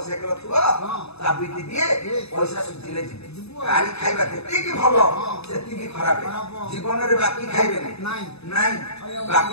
ଥିବ ଚାବିଟି ଦିଏ ପଇସା ସୁଝିଲେ ଯିବେ। ଗାଡି ଖାଇବା ଯେତିକି ଭଲ ସେତିକି ଖରାପ। ଜୀବନରେ ବାକି ଖାଇବେନି ନାଇଁ,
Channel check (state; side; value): late; right; 0.79 ms